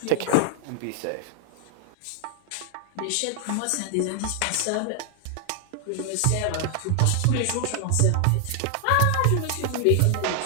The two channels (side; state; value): both; different; correlation 0.00